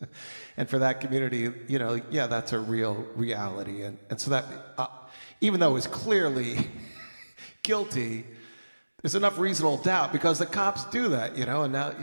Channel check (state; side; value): inverted; both; correlation -1.00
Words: And for that community, you know, yeah, that's a real reality. And so that even though he's clearly guilty, there's enough reasonable doubt because the cops do that, and